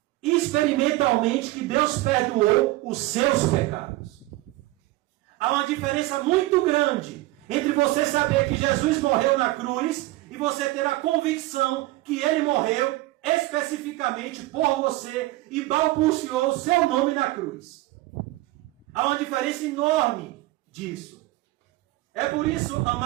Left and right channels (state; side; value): quieter; left; 18.8 dB